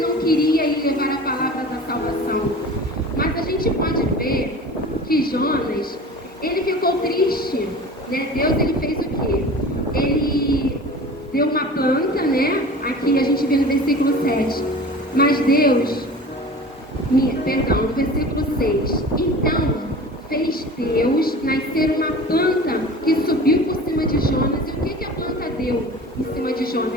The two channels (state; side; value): normal; both; correlation 0.38